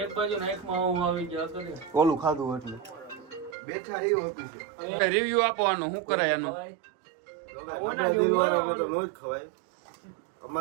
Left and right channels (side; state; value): left; drops out; at 3.6 s